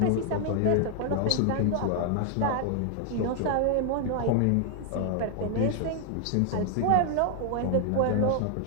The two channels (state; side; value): different; both; correlation 0.00